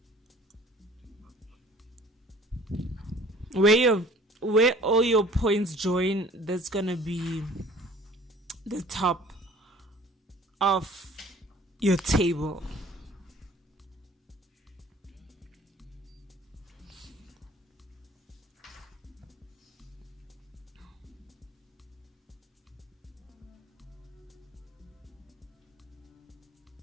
Where all your points join, that's gonna be the top of your table.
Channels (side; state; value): both; normal; correlation 0.50